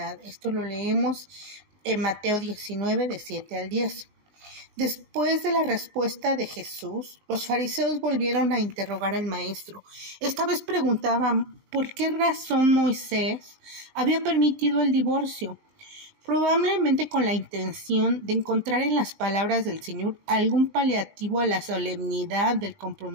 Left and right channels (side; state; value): left; late; 19 ms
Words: Esto lo leemos en Mateo 19, de 7 al 10. Después de la respuesta de Jesús, los fariseos volvieron a interrogar al maestro. Esta vez preguntaban por qué razón Moisés había permitido el divorcio, probablemente con la intención de encontrar en las palabras del Señor algún paliativo a la solemnidad del